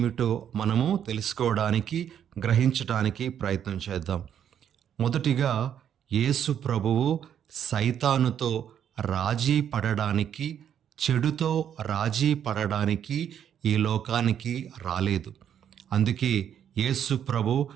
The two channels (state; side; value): quieter; left; 9.2 dB